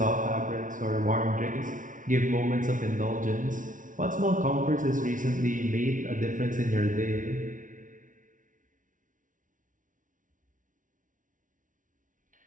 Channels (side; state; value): left; late; 0.38 ms